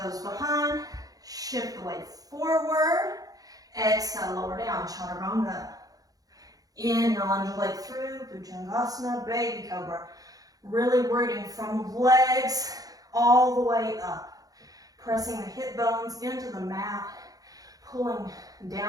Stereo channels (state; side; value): late; left; 0.18 ms